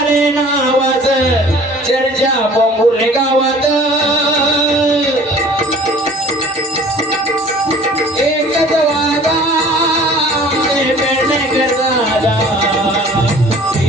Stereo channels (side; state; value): both; normal; correlation 0.48